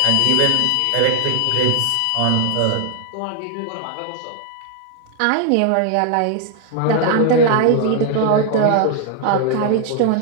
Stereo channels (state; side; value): different; both; correlation 0.00